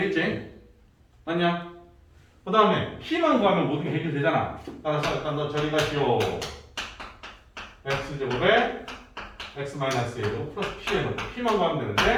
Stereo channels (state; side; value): identical; both; correlation 1.00